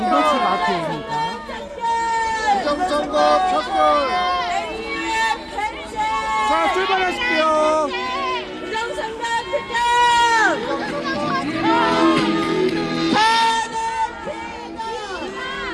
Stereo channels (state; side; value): identical; both; correlation 1.00